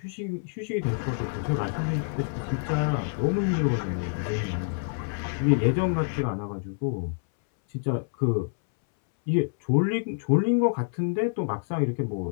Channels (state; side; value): silent; right; 60 dB below the other